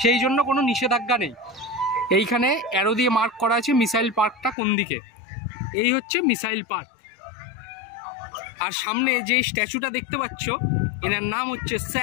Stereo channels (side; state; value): right; drops out; at 4.5 s